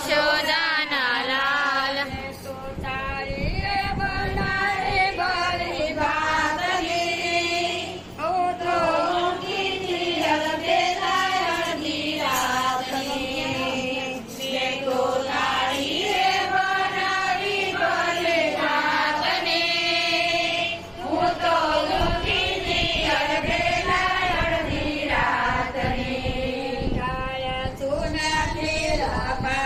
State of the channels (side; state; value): both; identical; correlation 1.00